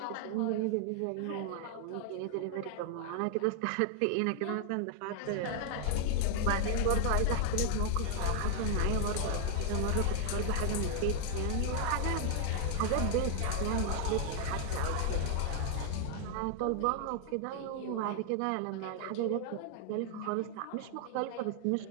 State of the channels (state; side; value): different; both; correlation 0.00